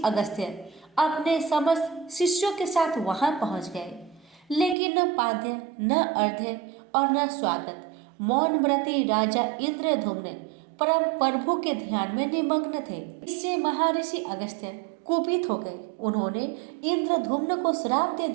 अगस्त्य अपने समस्त शिष्यों के साथ वहां पहुंच गए, लेकिन न पाद्य, न अर्घ्य और न स्वागत। मौन व्रती राजा इंद्रधुम्न परम प्रभु के ध्यान में निमग्न थे। इससे महर्षि अगस्त्य कुपित हो गए। उन्होंने इंद्रधुम्न को श्राप दे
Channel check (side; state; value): left; drops out; at 4.8 s